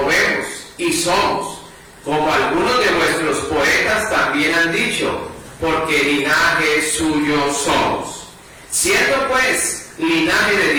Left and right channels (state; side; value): identical; both; correlation 1.00